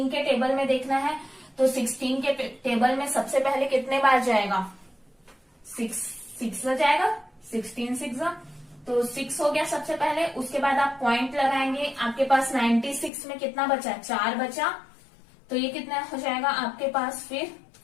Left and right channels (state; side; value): drops out; right; at 13.1 s